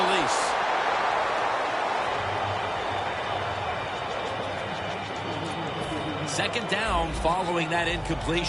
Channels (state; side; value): identical; both; correlation 1.00